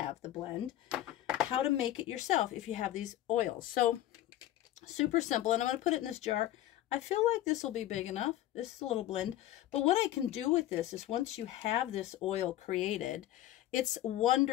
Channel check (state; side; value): quieter; right; 13.9 dB